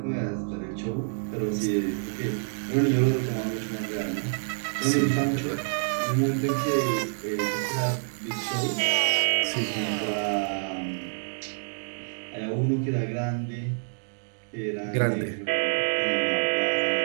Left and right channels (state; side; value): silent; left; digital silence